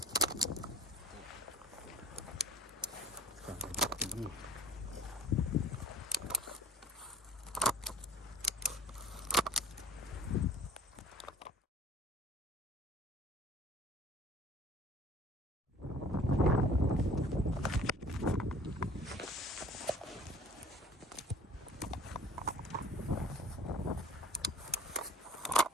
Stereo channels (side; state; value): both; normal; correlation 0.47